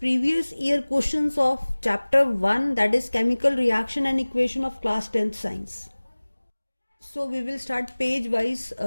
year questions of chapter 1, that is chemical reaction and equation of class 10th science. So we will start page wise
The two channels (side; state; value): both; inverted; correlation -1.00